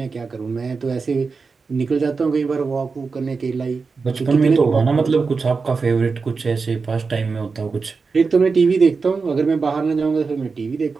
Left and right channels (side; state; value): left; quieter; 4.7 dB